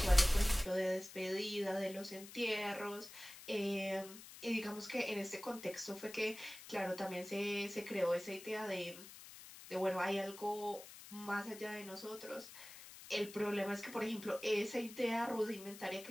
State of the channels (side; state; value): left; noise; hiss, 15 dB below the sound